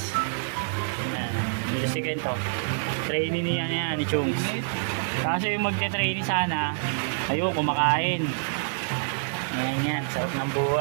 Ayan, dito si Kento. Trainee niya yan, ni Chung. Kasi yung magte-trainee sana, ayoko kumakain. Yan, sarap ng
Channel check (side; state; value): left; silent; digital silence